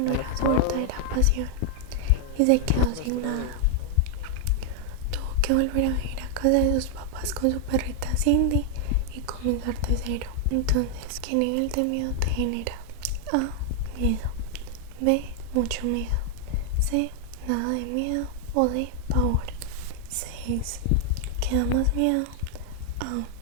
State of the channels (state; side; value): different; both; correlation 0.00